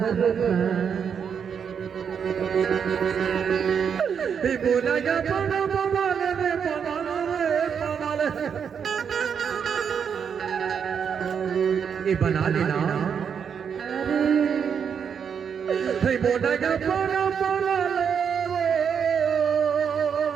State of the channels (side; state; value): left; quieter; 7.2 dB